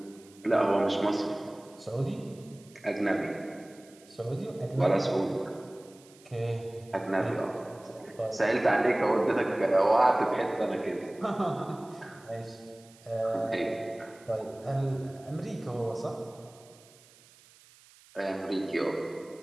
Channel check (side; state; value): right; noise; hiss, 26 dB below the sound